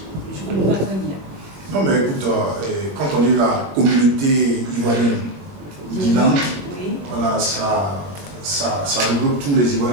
je ne comprends pas très bien. Non mais écoute, quand on est la communauté ivoirienne d'Irlande, voilà, ça regroupe tous les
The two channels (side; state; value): left; late; 22 ms